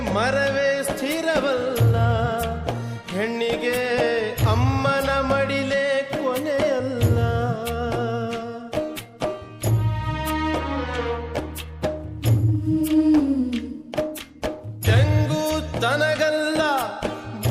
ಮರವೇ ಸ್ಥಿರವಲ್ಲ. ಹೆಣ್ಣಿಗೆ ಅಮ್ಮನ ಮಡಿಲೇ ಕೊನೆಯಲ್ಲ. ತೆಂಗು ತನಗಲ್ಲ,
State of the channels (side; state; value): both; identical; correlation 1.00